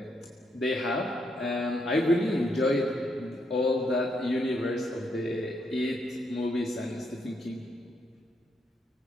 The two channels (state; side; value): normal; both; correlation 0.76